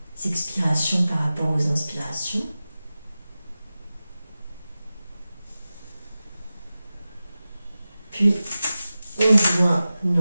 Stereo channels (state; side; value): inverted; both; correlation -0.95